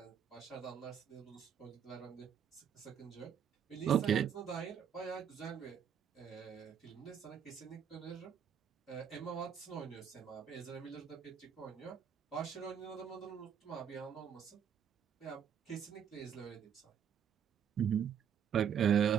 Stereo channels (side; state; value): left; quieter; 8.2 dB